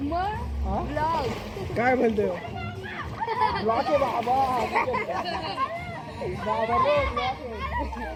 काय म्हणते ब्लॉक आहे बाबा.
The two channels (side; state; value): both; identical; correlation 1.00